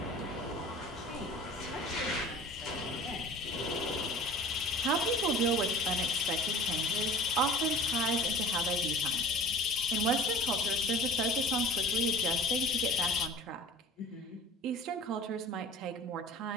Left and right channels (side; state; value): both; normal; correlation 0.43